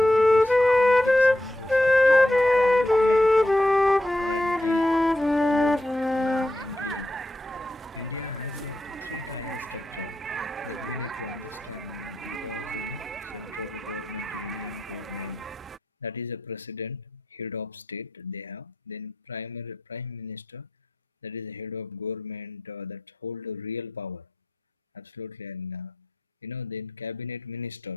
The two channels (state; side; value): normal; both; correlation 0.85